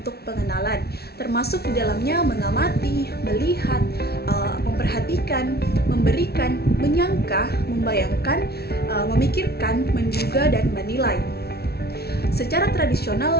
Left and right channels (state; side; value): late; right; 0.46 ms